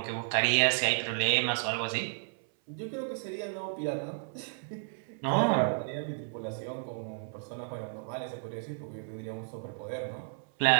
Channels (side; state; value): left; silent; 56 dB below the other